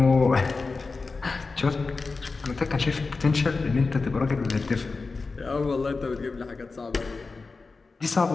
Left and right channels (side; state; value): right; quieter; 4.1 dB